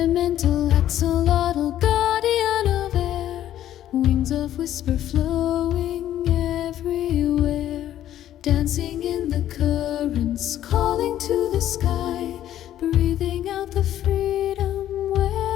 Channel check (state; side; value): quieter; right; 12.0 dB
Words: axolotl, guardian of air, wings of whisper flowing everywhere, dancing in the currents, calling to the sky, breathing out the freedom